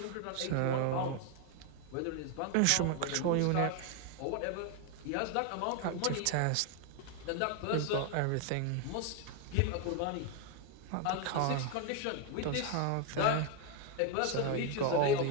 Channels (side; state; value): both; different; correlation 0.01